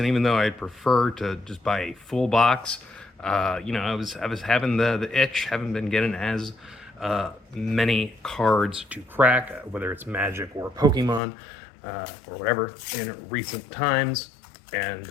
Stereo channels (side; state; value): right; drops out; at 11.2 s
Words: even though I'd prefer to just buy a full box, I was having the itch, haven't been getting as many cards to crack, whether it's Magic or Pokemon or whatever, in recent times. And